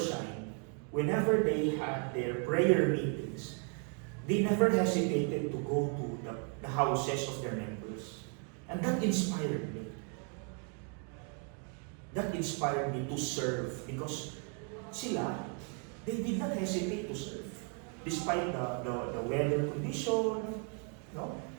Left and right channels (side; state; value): left; quieter; 39.5 dB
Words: whenever they had their prayer meetings, they never hesitated to go to the houses of their members. And that inspired me. That inspired me to serve because they did not hesitate to serve. Despite the weather condition,